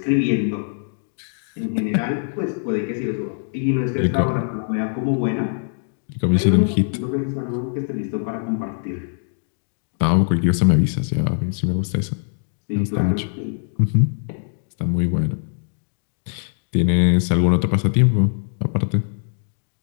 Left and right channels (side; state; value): right; silent; digital silence